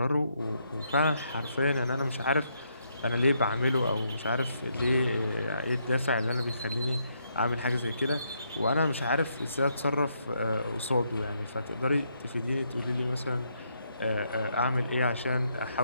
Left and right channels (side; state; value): both; inverted; correlation -0.76